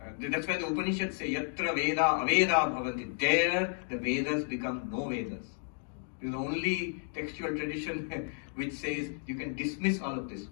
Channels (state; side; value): silent; right; 56 dB below the other